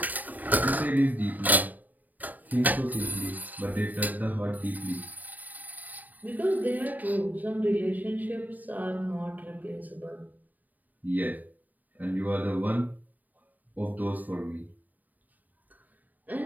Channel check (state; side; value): late; left; 0.082 ms